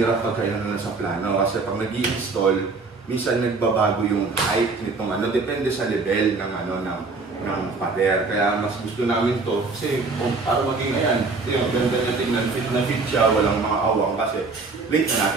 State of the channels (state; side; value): quieter; left; 4.0 dB